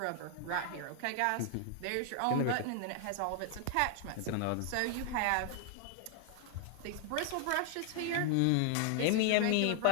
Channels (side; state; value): both; different; correlation 0.00